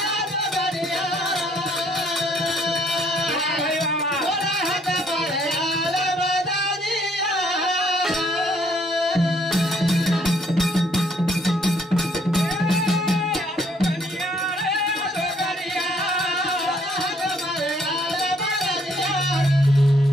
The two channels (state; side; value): normal; both; correlation 0.65